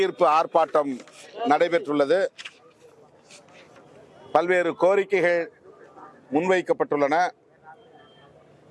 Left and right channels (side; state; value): both; identical; correlation 1.00